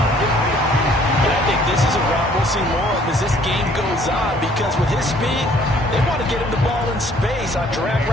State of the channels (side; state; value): both; normal; correlation 0.59